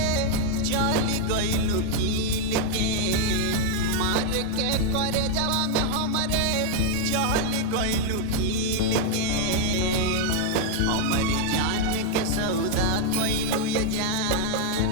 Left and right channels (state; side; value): different; both; correlation 0.00